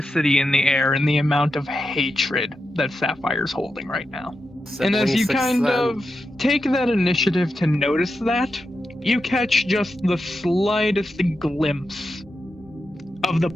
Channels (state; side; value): normal; both; correlation 0.88